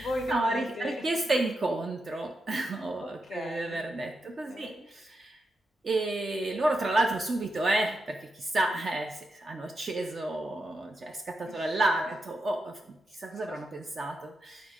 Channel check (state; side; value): normal; both; correlation 0.86